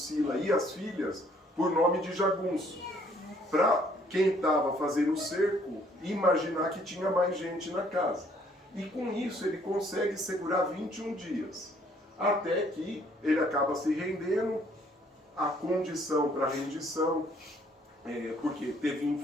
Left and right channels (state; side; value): normal; both; correlation 0.63